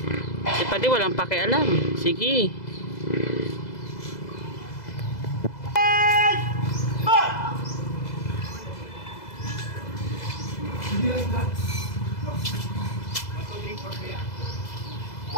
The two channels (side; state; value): right; late; 2.0 ms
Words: Si Padi walang pakialam. Sige.